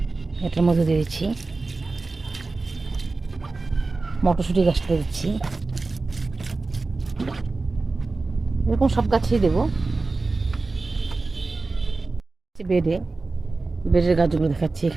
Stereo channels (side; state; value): left; quieter; 3.6 dB